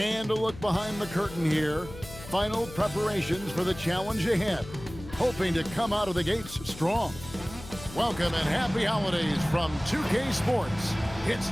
a look behind the curtain here. Final preparations for the challenge ahead. Hoping to come out of the gates strong. Welcome and happy holidays from 2K Sports.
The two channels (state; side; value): noise; left; hum, 15 dB below the sound